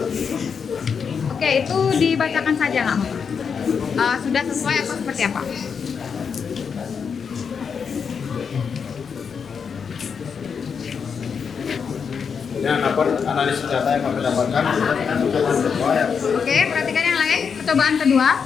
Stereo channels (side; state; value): right; quieter; 6.3 dB